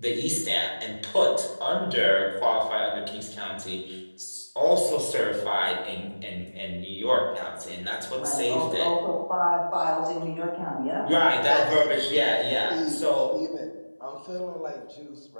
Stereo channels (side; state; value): both; inverted; correlation -1.00